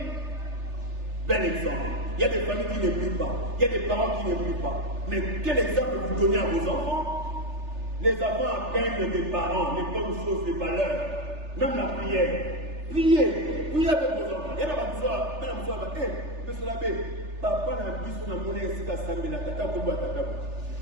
Bel exemple. Il y a des familles qui ne prient pas, il y a des parents qui ne prient pas. Mais quel exemple vous donnez à vos enfants? Les enfants apprennent des parents, les bonnes choses, les valeurs, même la prière. Priez avec vos enfants. Il y a monsieur l'abbé, papa n'a plus son amour ici à Sambela, tata Kobo Tata.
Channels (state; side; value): late; left; 3.4 ms